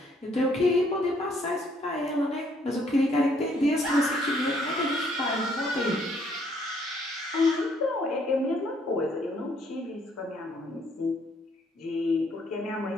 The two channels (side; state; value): both; normal; correlation 0.66